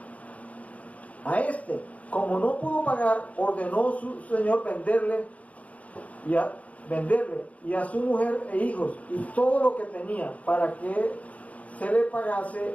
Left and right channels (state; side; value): late; right; 0.068 ms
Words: A este, como no pudo pagar, ordenó su señor venderle y a su mujer e hijos y todo lo que tenía para que se le pagase